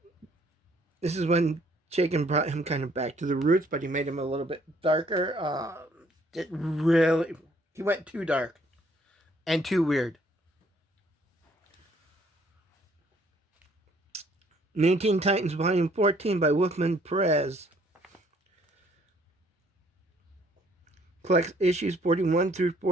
This is when Chaykin brought him kind of back to the roots, but he made him a little bit darker. He went too dark and too weird. 19 Titans Volume 14 by Wolfman Perez. Collects issues 41 through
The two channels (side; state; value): both; normal; correlation 0.63